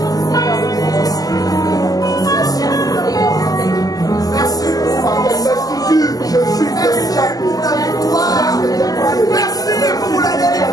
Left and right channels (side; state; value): right; late; 0.17 ms